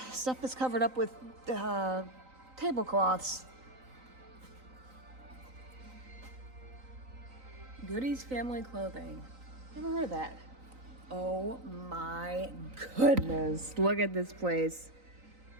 stuff that's covered up with tablecloths. Goody's Family Clothing. Never heard of that. Oh my goodness. Look at this place.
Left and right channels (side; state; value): left; late; 3.9 ms